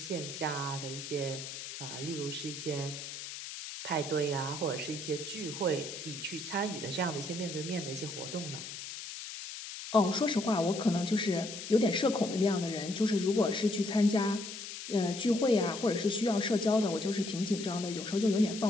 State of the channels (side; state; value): left; noise; hiss, 9 dB below the sound